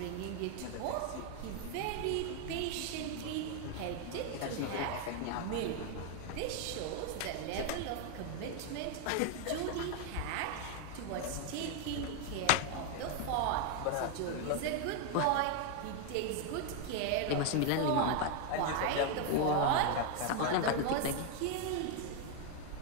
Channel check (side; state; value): both; different; correlation 0.01